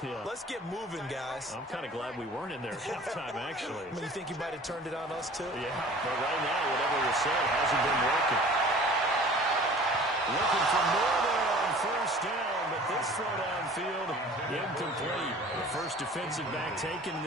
Yeah. Let's get moving, guys." I'm kind of glad we weren't in there at halftime, actually. I mean, you think he might have turned it on us, too? Yeah, but right now, whatever was said hasn't been working. Looking for more there on first down, but this throw downfield incomplete. The first defensive back taken in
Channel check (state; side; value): normal; both; correlation 0.46